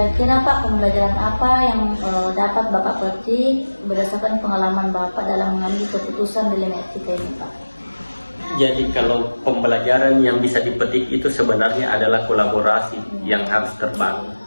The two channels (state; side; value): inverted; both; correlation -1.00